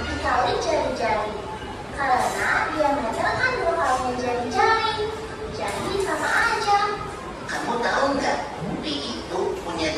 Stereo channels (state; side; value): identical; both; correlation 1.00